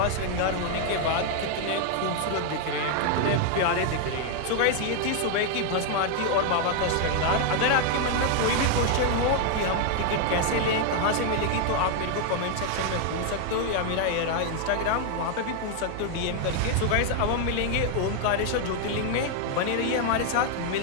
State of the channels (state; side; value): different; both; correlation 0.00